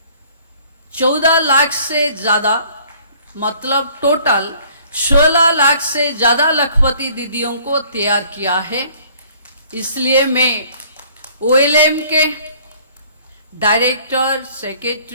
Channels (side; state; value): both; inverted; correlation -0.56